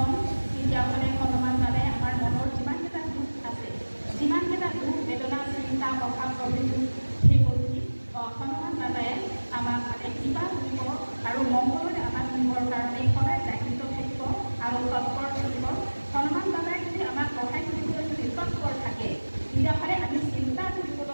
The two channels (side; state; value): both; inverted; correlation -1.00